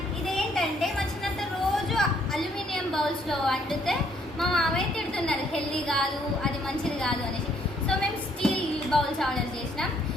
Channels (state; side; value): normal; both; correlation 0.67